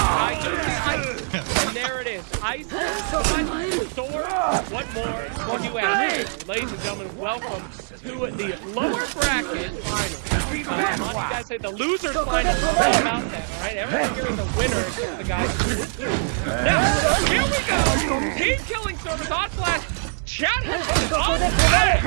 do see ice. And there it is. Ice, sword, what more can you ask? Ladies and gentlemen, welcome to the lower bracket final. You guys say the losers final is all about that, all right? Everyone here is a winner except the guys who lose. Now, here we go. Team Killing Service on Flash. Chat has been on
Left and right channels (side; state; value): left; silent; digital silence